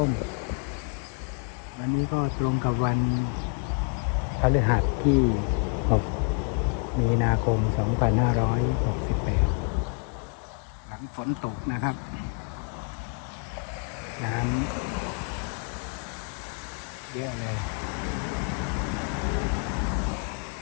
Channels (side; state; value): right; quieter; 38.8 dB